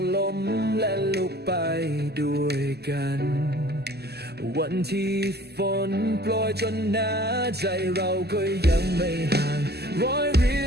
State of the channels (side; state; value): left; late; 0.47 ms